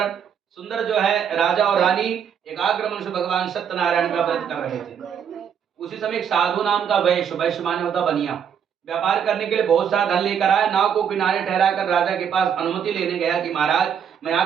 सुंदर जो है राजा और रानी एकाग्र मन से भगवान सत्यनारायण का व्रत कर रहे थे। उसी समय एक साधु नाम का वैश्य, वैश्य माने होता बनिया, व्यापार करने के लिए बहुत सारा धन लेकर आया। नाव को किनारे ठहराकर राजा के पास अनुमति लेने गया कि महाराज मैं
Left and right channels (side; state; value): left; quieter; 7.9 dB